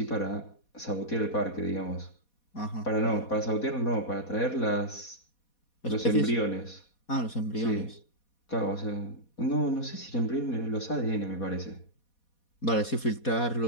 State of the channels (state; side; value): late; right; 4.2 ms